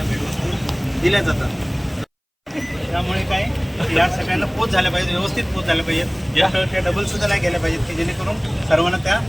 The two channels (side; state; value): both; identical; correlation 1.00